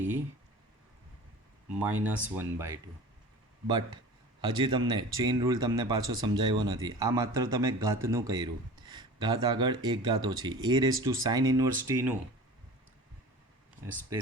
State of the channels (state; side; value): normal; both; correlation 0.38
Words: minus 1/2. But હજી તમને ચેઇન રૂલ તમને પાછો સમજાવ્યો નથી. આ માત્ર તમે ઘાતનું કર્યું, ઘાત આગળ એક ઘાત ઓછી. A raise to sine inverse ટીનું